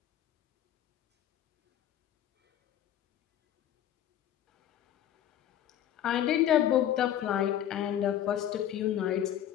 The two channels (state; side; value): quieter; right; 11.0 dB